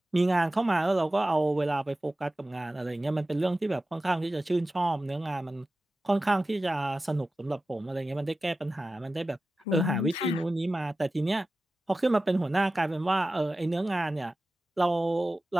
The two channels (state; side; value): normal; both; correlation 0.95